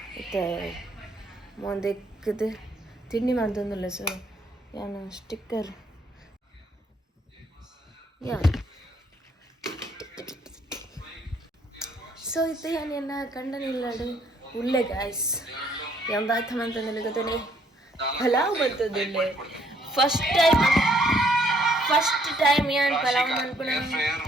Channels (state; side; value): normal; both; correlation 0.66